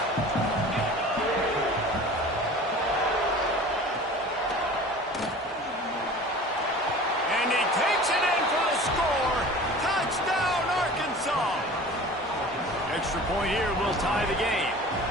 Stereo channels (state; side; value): normal; both; correlation 0.41